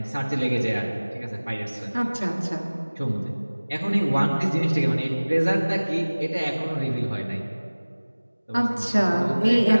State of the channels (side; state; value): both; inverted; correlation -1.00